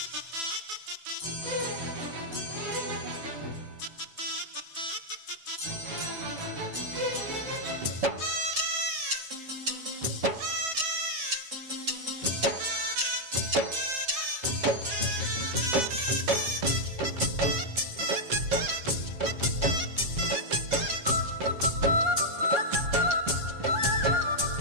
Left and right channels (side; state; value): left; late; 7.2 ms